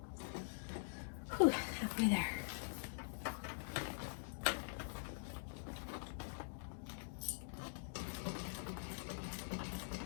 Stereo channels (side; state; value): right; silent; digital silence